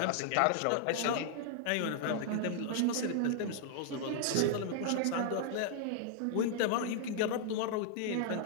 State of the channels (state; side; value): different; both; correlation -0.01